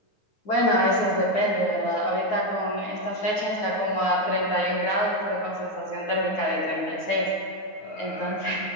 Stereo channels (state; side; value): late; right; 9.3 ms